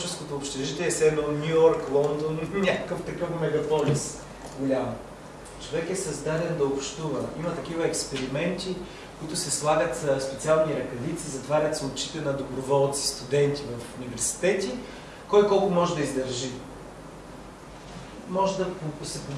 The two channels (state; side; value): identical; both; correlation 1.00